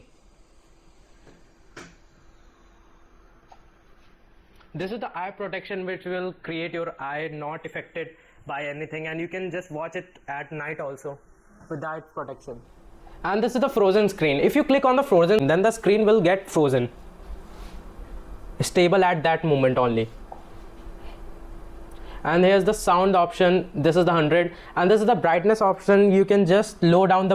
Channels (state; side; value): identical; both; correlation 1.00